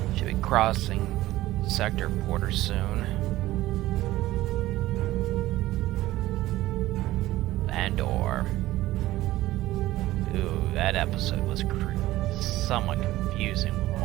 Should be crossing sector border soon. Andor. Ooh, that episode was somewhat confusing with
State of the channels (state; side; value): quieter; left; 16.3 dB